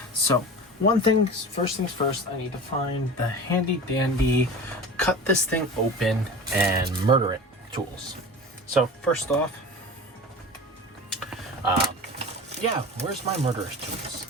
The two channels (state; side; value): normal; both; correlation 0.34